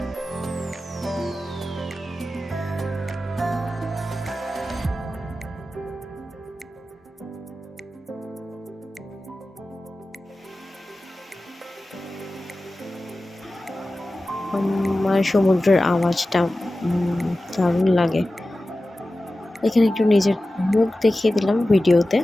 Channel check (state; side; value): normal; both; correlation 0.95